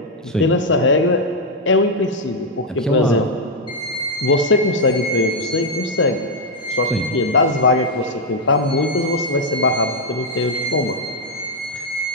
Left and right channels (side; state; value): both; normal; correlation -0.01